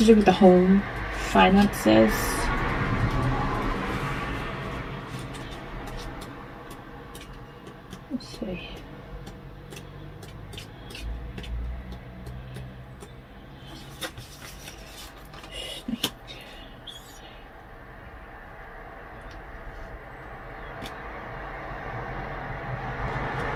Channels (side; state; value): both; identical; correlation 1.00